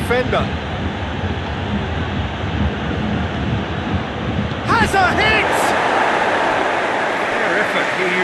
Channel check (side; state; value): both; identical; correlation 1.00